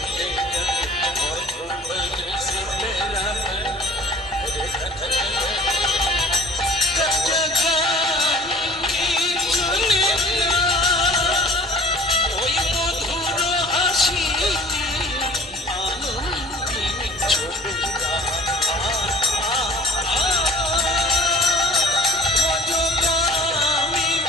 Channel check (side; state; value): both; normal; correlation 0.47